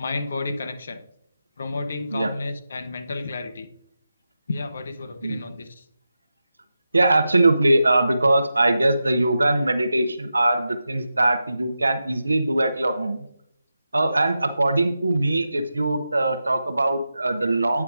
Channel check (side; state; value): both; inverted; correlation -0.90